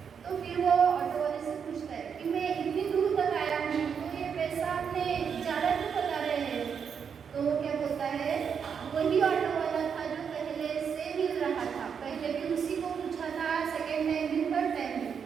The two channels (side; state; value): left; quieter; 6.9 dB